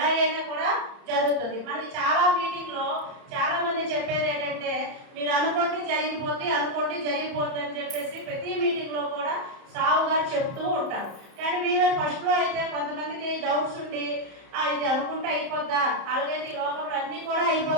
అయినా కూడా జరుగుతుంది. మనకి చాలా మీటింగ్లో చాలా మంది చెప్పేది ఏంటంటే మీరు అనుకోండి జరిగిపోద్ది, అనుకోండి జరిగిపోద్ది అని చెప్పేసి ప్రతి మీటింగ్లో కూడా సావుగా చెప్తూ ఉంటారు. కానీ మీరు ఫస్ట్లో అయితే కొంతమందికి డౌట్స్ ఉండి ఇది అనుకుంటే అయిపోద్దా, అలాగే ఈ లోకంలో అన్నీ కూడా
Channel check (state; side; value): late; left; 31 ms